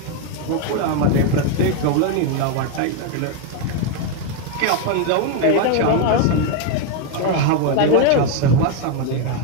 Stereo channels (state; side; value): different; both; correlation 0.01